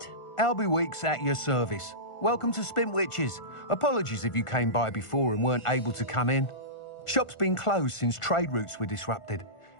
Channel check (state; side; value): late; right; 1.5 ms